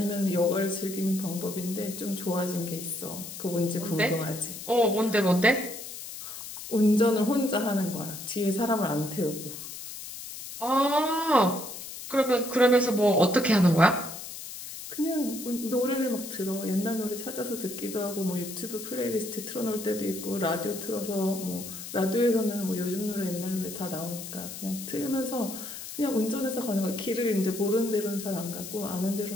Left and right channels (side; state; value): left; noise; hiss, 10 dB below the sound